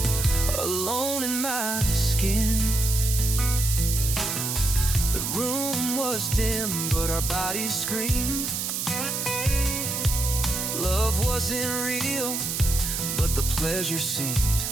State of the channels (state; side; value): noise; right; hiss, 2 dB below the sound